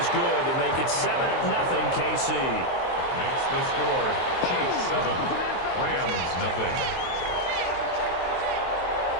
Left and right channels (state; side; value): late; right; 23 ms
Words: good to make it 7-0 KC. Makes the score Chiefs 7, Rams 0.